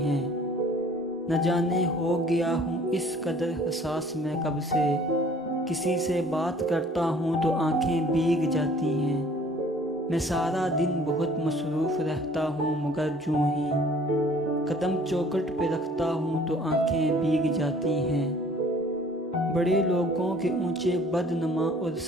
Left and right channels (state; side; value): normal; both; correlation 0.53